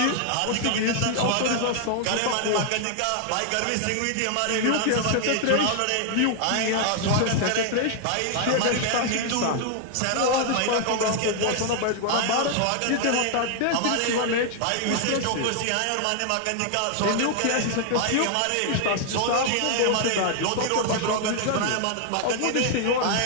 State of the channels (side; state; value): both; different; correlation 0.00